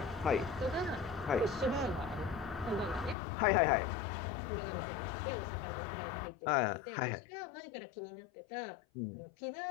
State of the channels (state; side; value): drops out; right; at 3.2 s